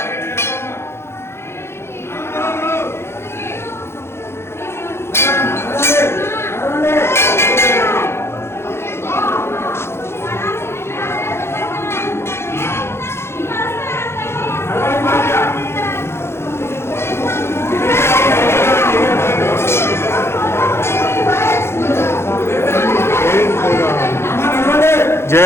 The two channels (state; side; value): late; right; 0.12 ms